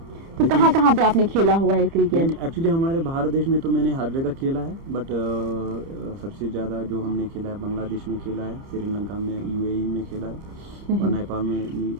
तो कहाँ पे आपने खेला हुआ है क्रिकेट? एक्चुअली हमारे भारत देश में तो मैंने हर जगह खेला है, बट सबसे ज़्यादा जो हमने खेला है बांग्लादेश में खेला है, श्रीलंका में, UAE में खेला है, और नेपाल में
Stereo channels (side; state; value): left; late; 30 ms